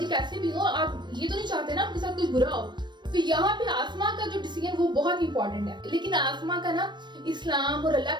कैसे भी हो, आप ये तो नहीं चाहते ना आपके साथ कुछ बुरा हो। तो यहाँ पे आसमा का जो डिसीजन वो बहुत इंपॉर्टेंट है, लेकिन आसमा का ना इस्लाम और अल्लाह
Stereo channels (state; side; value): late; left; 0.22 ms